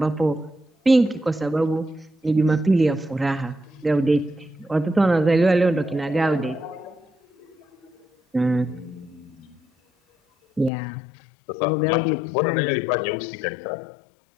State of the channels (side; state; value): right; drops out; at 10.7 s